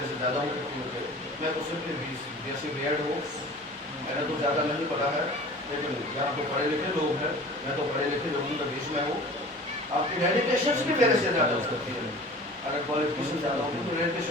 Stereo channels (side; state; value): both; normal; correlation 0.42